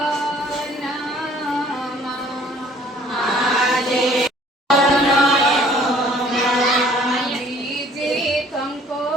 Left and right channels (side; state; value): both; normal; correlation 0.56